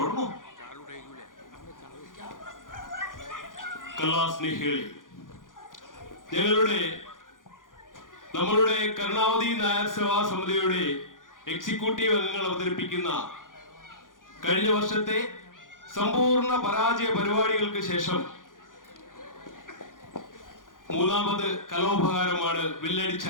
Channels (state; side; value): late; right; 0.89 ms